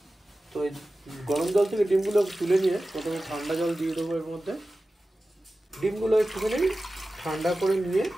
তো এই গরম জল থেকে ডিমগুলো তুলে নিয়ে প্রথমে ঠান্ডা জল দিয়ে দেবো এর মধ্যে। ডিমগুলো একটুখানি ঠান্ডা করে নিয়ে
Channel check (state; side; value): normal; both; correlation 0.95